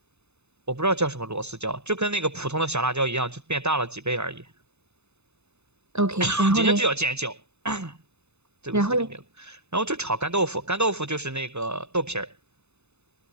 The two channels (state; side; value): late; left; 0.81 ms